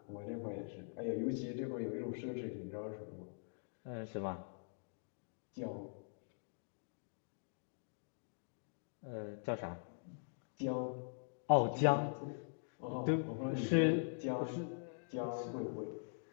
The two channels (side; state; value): right; silent; digital silence